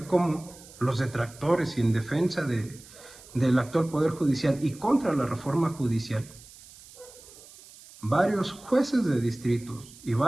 cómo los detractores y en defensa del actual Poder Judicial y contra la reforma judicial, varios jueces de distritos y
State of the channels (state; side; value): noise; right; hiss, 21 dB below the sound